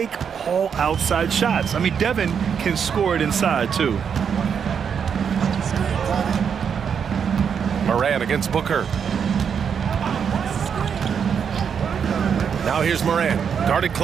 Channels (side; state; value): left; quieter; 7.2 dB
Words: all outside shots. I mean, Devin can score it inside, too. Morant against Booker. Now here's Morant, guarded